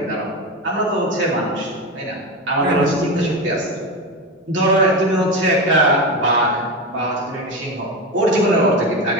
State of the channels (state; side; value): normal; both; correlation 0.19